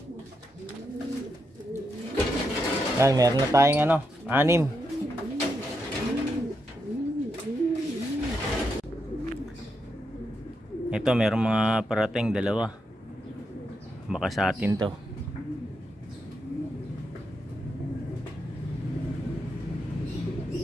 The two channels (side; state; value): both; normal; correlation 0.83